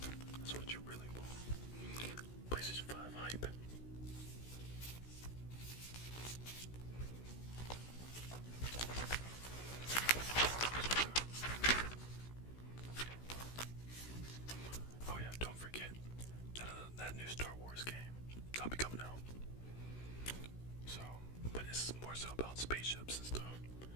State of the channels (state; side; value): late; right; 16 ms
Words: that new Star Wars game that'll be coming out. So, but it's more so about spaceships and stuff,